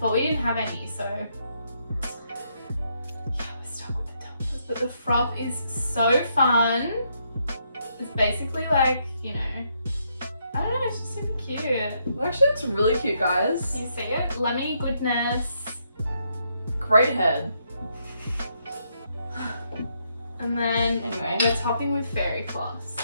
but we didn't have any, so yeah, we're stuck with the tumblers. But the froth is so fun. It's basically like, you know, I don't know, it's just super cute. It actually looks really cute, guys. You see it? Lemony goodness. Great head. And then Anyway, we're topping with fairy floss.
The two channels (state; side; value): inverted; both; correlation -0.76